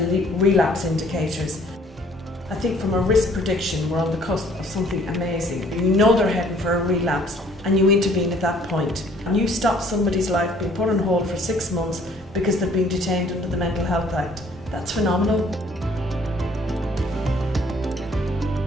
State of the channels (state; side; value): normal; both; correlation 0.58